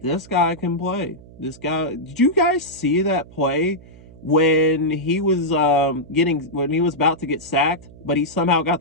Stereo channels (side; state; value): right; noise; hum, 21 dB below the sound